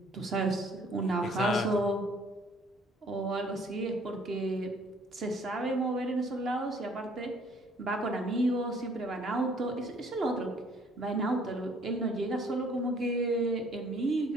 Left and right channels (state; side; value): normal; both; correlation 0.59